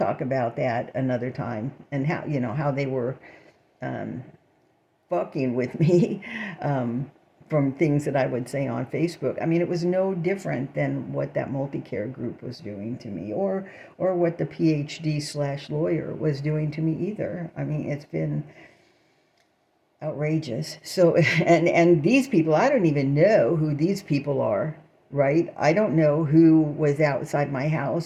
about that another time, and how they were fucking with me from things that I would say on Facebook. I mean, it was no different than what that multi-care group was doing to me, or what the PhD/lawyer was doing to me either. I mean, it's been outrageous. So, and these people, I don't even know who these people are, right? I don't know who was outside my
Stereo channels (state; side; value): identical; both; correlation 1.00